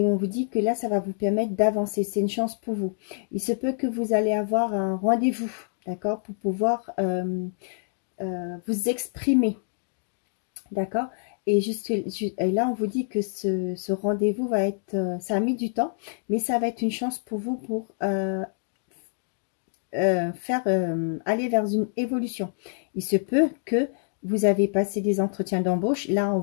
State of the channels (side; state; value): right; silent; digital silence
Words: on vous dit que là, ça va vous permettre d'avancer. C'est une chance pour vous. Il se peut que vous allez avoir un rendez-vous, d'accord, pour pouvoir vous exprimer, d'accord. Et là, on vous dit que ce rendez-vous va être, ça a mis du temps, mais ça va être une chance pour vous pour aller vers une évolution. Il se peut que vous avez passé des entretiens d'embauche. Là, on